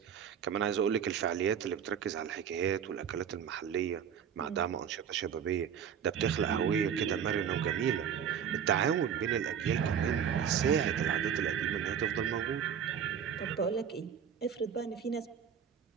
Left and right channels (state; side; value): quieter; left; 8.0 dB